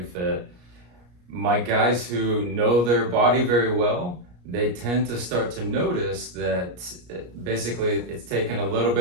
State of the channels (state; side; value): late; left; 34 ms